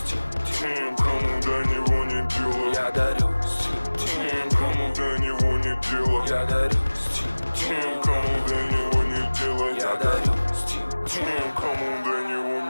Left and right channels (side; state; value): both; inverted; correlation -1.00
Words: тем, кому до него не дело. Я дарю стиль тем, кому до него не дело. Я дарю стиль тем, кому до него не дело. Я дарю стиль тем, кому до него